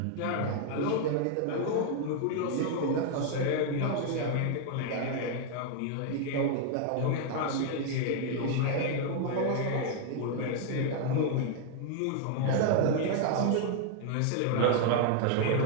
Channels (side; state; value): both; different; correlation 0.00